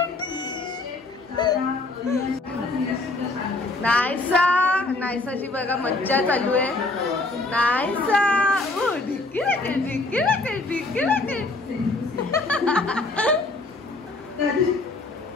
नायसा नायसाची बघा मज्जा चालू आहे. नायसा ढिक्की राकेट ढिक्की राकेट ढिक्की राकेट.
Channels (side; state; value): right; quieter; 3.2 dB